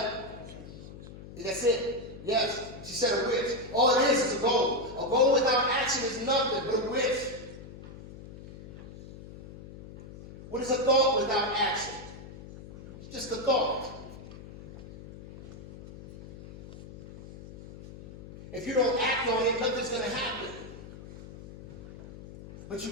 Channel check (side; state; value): left; noise; hum, 15 dB below the sound